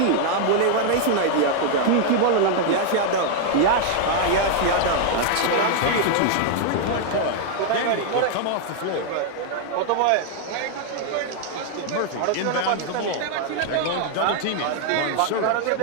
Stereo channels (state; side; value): different; both; correlation 0.00